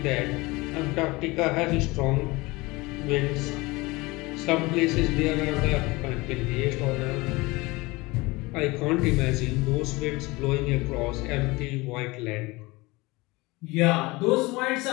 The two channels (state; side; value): quieter; right; 22.8 dB